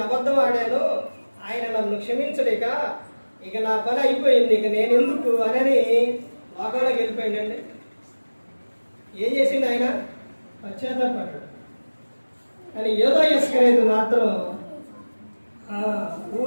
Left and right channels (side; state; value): both; inverted; correlation -1.00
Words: అబద్ధం ఆడాను, ఆయన నన్ను క్షమించలేక ఇక నా పని అయిపోయింది, ఇక నేను ఎందుకు అని లోకంలోకి వెళ్ళిపోయిందండి. ఏం చేసింది ఆయన? పశ్చాత్తాపడ్డాడు. కానీ యోధా ఇస్కరియోతు మాత్రం